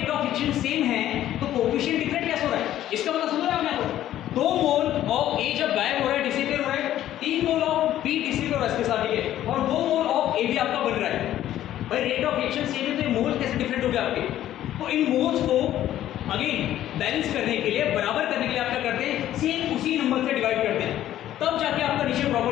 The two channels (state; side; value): quieter; right; 12.6 dB